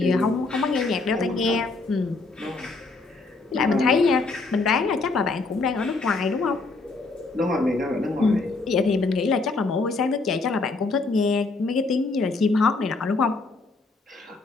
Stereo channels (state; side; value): quieter; right; 3.7 dB